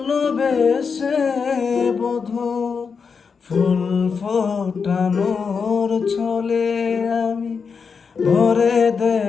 বধূ ফুল ফোটানোর ছলে আমি ভরে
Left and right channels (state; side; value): quieter; right; 5.6 dB